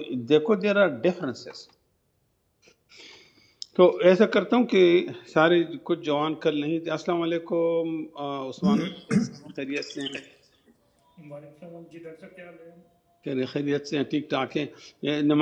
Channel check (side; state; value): both; identical; correlation 1.00